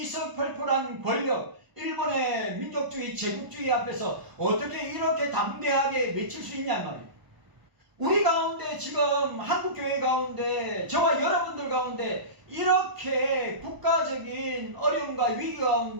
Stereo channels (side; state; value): left; late; 1.0 ms